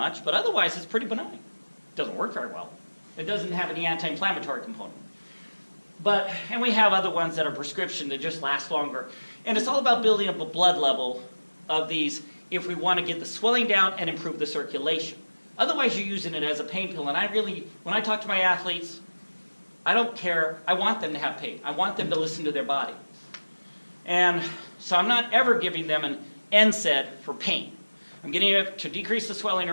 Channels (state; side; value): inverted; both; correlation -1.00